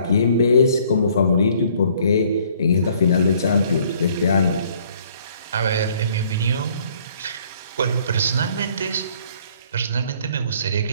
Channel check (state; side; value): inverted; both; correlation -0.60